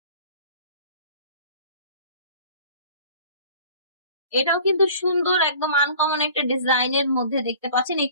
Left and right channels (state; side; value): inverted; both; correlation -0.47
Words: এটাও কিন্তু সুন্দর, একদম আনকমন একটা ডিজাইনের মধ্যে দেখতে পাচ্ছেন। এই